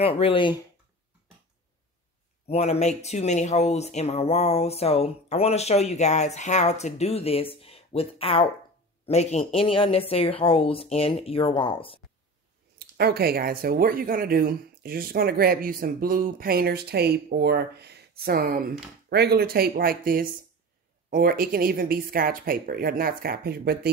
really want to make too many holes in my wall, so I want to show you guys how to do this without making any unnecessary holes in your walls. Okay guys, so what you're going to do is you're just going to grab you some blue painter's tape or some regular tape like this, or it can even be scotch paper, not scotch paper, but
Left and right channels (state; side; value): normal; both; correlation 0.32